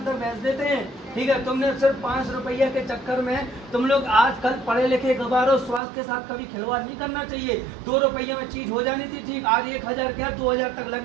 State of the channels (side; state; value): left; drops out; at 5.8 s